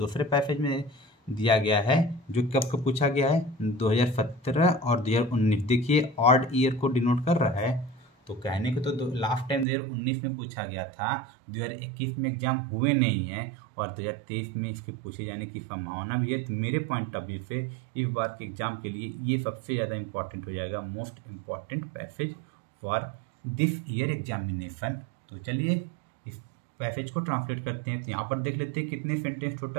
पैसेज में दिया गया है जो कब को पूछा गया है, 2017 और 2019। देखिए ऑड ईयर को डिनोट कर रहा है, तो कहने को तो लास्ट टाइम 2019 में पूछा गया था, 2021 में एग्जाम हुए नहीं है और 2023 में इसके पूछे जाने की संभावना भी है। तो मेरे पॉइंट ऑफ व्यू से इस बार के एग्जाम के लिए ये सबसे ज़्यादा इंपॉर्टेंट हो जाएगा, most important passage for this year examination. तो चलिए इस पैसेज को ट्रांसलेट करते हैं। तो यहाँ पर देख लेते हैं कितने सेंटेंस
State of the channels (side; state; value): left; drops out; at 9.7 s